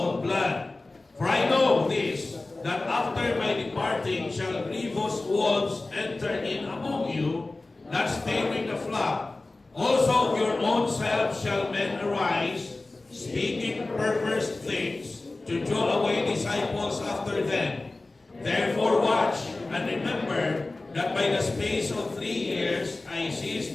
blood. For I know this, that after my departing shall grievous wolves enter in among you, not sparing the flock. Also of your own selves shall men arise, speaking perverse things, to draw away disciples after them. Therefore watch and remember that by the space of 3 years I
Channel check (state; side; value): quieter; right; 3.1 dB